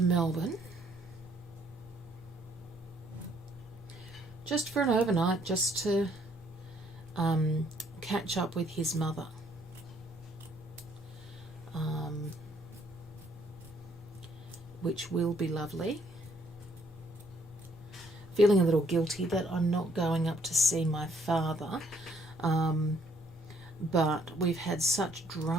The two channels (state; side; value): normal; both; correlation 0.66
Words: just for an overnight, just to catch up with his mother. Which will be lovely. Feeling a little guilty that I'm not going up to see my father. But we've had such